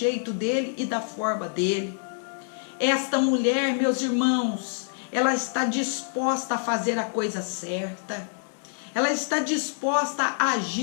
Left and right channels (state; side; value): silent; right; digital silence